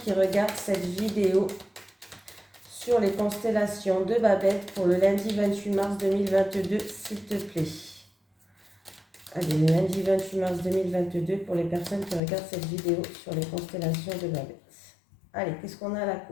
qui regardent cette vidéo sur les constellations de Babette pour le lundi 28 mars 2022, s'il te plaît. Allez, le lundi 28 mars 2022 pour les personnes qui regardent cette vidéo sur les constellations de Babette. Allez, qu'est-ce qu'on a à la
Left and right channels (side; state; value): right; drops out; at 12.2 s